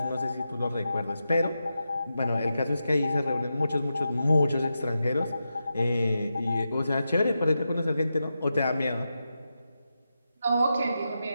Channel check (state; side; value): inverted; both; correlation -0.89